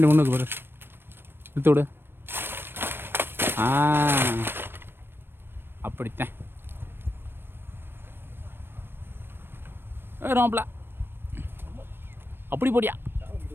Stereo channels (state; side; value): late; left; 0.10 ms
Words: ஒன்றுக்கு போடு. இழுத்து விடு. அப்படித்தான் ரோம்ப்ல அப்படி போடியா.